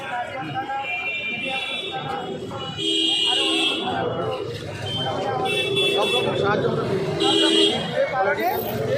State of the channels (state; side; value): identical; both; correlation 1.00